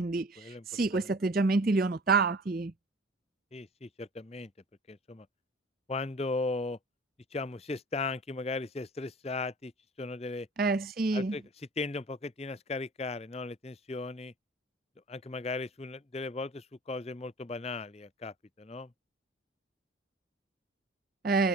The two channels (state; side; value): normal; both; correlation 0.45